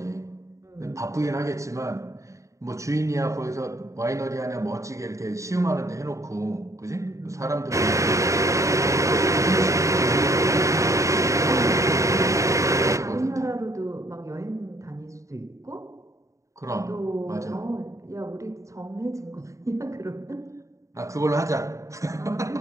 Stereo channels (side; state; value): left; late; 0.15 ms